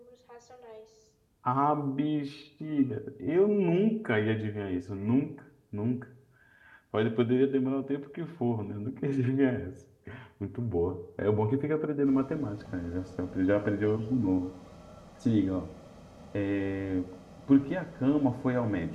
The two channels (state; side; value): identical; both; correlation 1.00